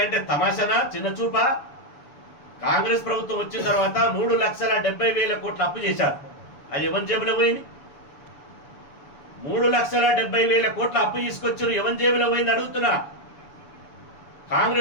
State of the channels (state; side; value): late; right; 7.0 ms